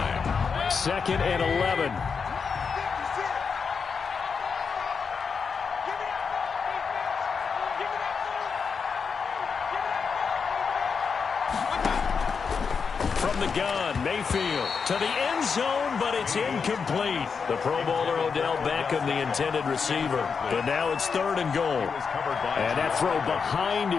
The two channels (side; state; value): right; quieter; 5.7 dB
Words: 2nd and 11. From the gun, Mayfield to the end zone, but it's incomplete. The Pro Bowler Odell Beckham, the intended receiver. But now it's 3rd and goal. And that throw behind